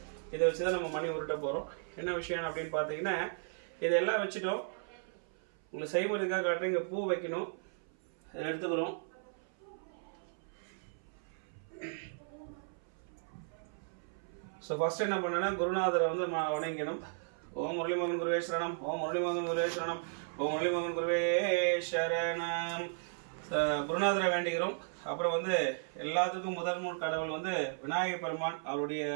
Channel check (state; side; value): silent; left; 54 dB below the other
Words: இதை வச்சு தான் நம்ம மணி உருட்ட போகிறோம். என்ன விஷயம் அப்படின்னு பார்த்தீங்கன்னா, இதெல்லாம் வச்சுட்டோம். உங்களுக்கு செய்முறைக்காக காட்டுறேன். இங்கே பூ வைக்கணும், எடுத்துக்கிறோம். ஸோ ஃபர்ஸ்ட் என்ன பண்ணேன்னா, குருநாதரை வந்து வணங்கிக்கணும். ஓம் முரளிமோகன் குருவே சரணம், ஓம் முரளிமோகன் குருவே சரணம், ஓம் முரளிமோகன் குருவே சரணம். குருநாதரை வேண்டிக்கிறோம். அப்புறம் வந்து எல்லாத்துக்கும் முதல் கடவுள் வந்து விநாயக பெருமான். அவருடைய